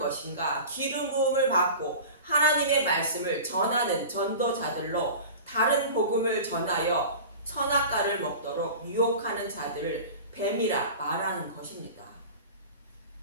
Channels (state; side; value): inverted; both; correlation -0.36